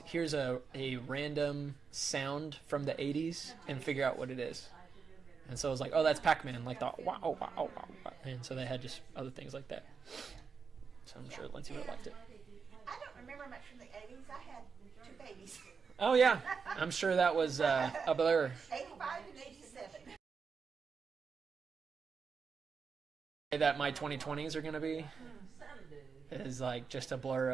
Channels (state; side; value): quieter; left; 5.6 dB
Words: here's a random sound from the 80s and figure out what it is. And so I was like, oh, that's Pac-Man. Like the wow, wow, wow, wow. And so they had just other things like that. So I'm sure Lindsay would have liked it. I don't remember much from the 80s. I had two babies. Oh, yeah. I'm sure that was a blur. 85 and 87. That my 2020s are going to be is like just a blur